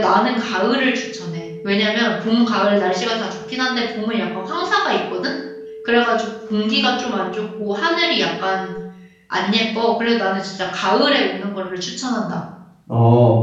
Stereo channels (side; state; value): both; identical; correlation 1.00